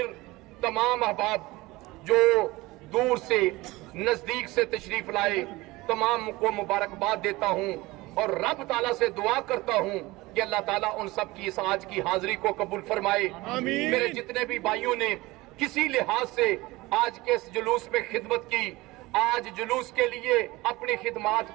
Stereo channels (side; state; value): left; quieter; 20.7 dB